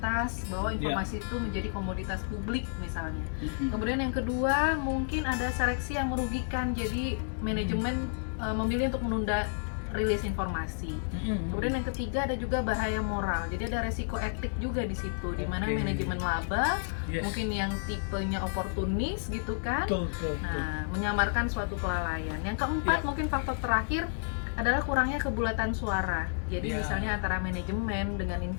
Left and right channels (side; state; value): right; silent; digital silence